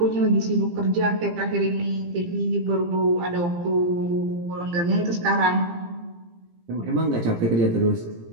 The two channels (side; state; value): left; late; 17 ms